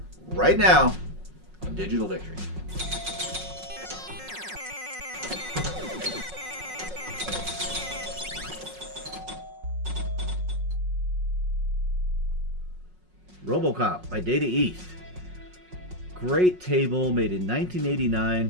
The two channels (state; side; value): late; left; 5.5 ms